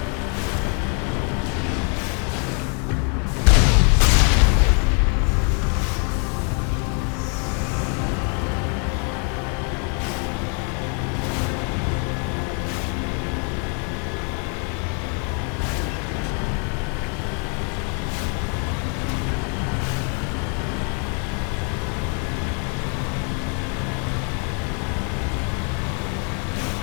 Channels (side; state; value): right; quieter; 39.5 dB